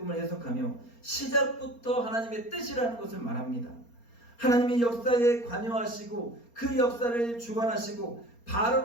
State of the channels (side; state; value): right; late; 4.3 ms